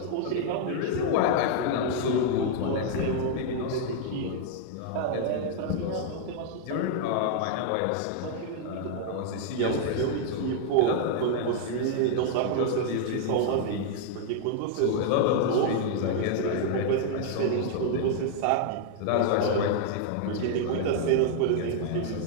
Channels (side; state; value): both; different; correlation 0.00